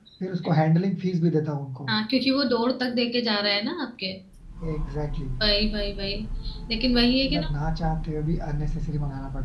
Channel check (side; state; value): both; identical; correlation 1.00